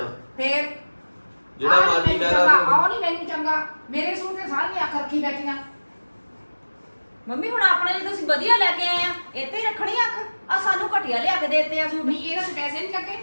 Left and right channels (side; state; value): both; inverted; correlation -1.00